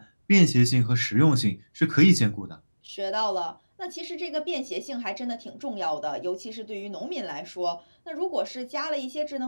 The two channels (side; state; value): both; inverted; correlation -1.00